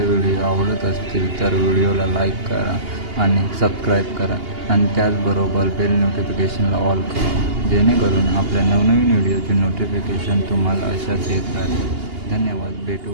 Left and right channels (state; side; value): late; left; 2.8 ms